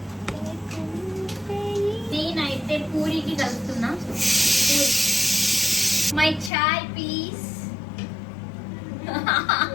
నేనైతే పూరికి కలుపుతున్నా. My chai please.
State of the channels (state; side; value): drops out; right; at 6.5 s